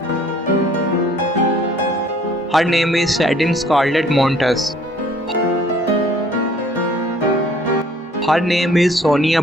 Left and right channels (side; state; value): both; normal; correlation 0.56